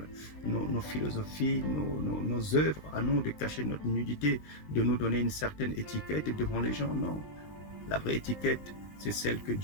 nos philosophies, nos œuvres, à nous de cacher notre nudité, de nous donner une certaine étiquette devant les gens. Non. La vraie étiquette, c'est celle que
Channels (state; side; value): late; right; 20 ms